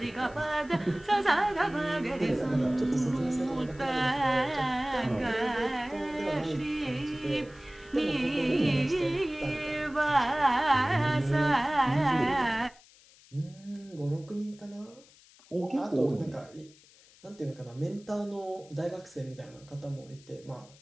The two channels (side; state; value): left; noise; hiss, 26 dB below the sound